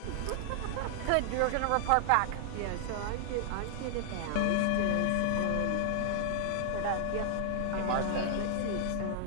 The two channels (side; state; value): both; different; correlation -0.01